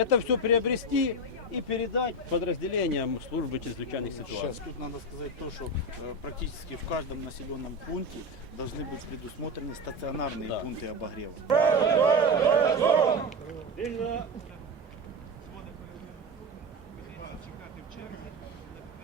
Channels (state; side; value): normal; both; correlation 0.19